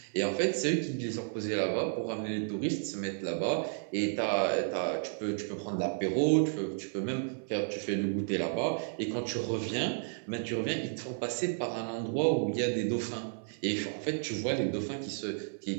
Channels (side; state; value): left; silent; 56 dB below the other